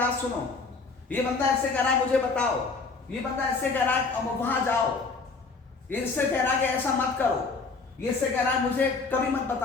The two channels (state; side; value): quieter; right; 4.2 dB